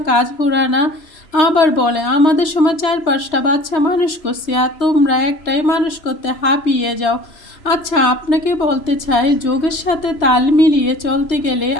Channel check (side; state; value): right; late; 3.0 ms